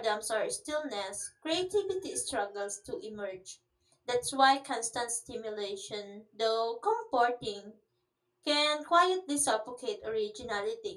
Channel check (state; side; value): identical; both; correlation 1.00